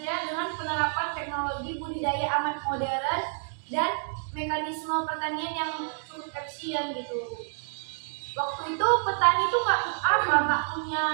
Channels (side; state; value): left; silent; digital silence